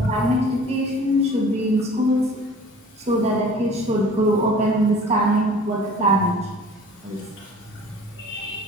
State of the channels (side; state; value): both; normal; correlation 0.46